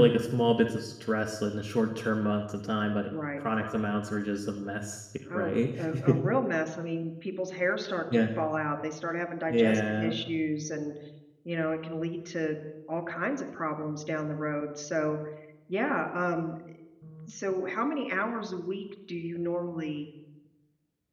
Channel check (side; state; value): both; identical; correlation 1.00